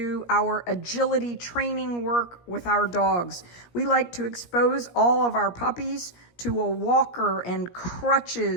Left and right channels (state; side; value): late; right; 17 ms